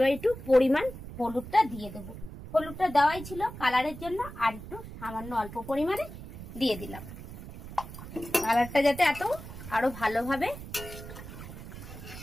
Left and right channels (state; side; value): noise; right; rumble, 12 dB below the sound